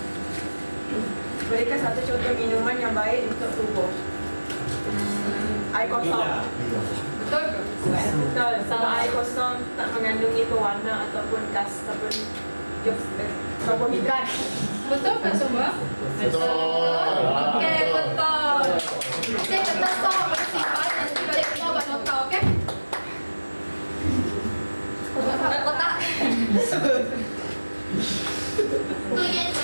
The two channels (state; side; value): inverted; both; correlation -1.00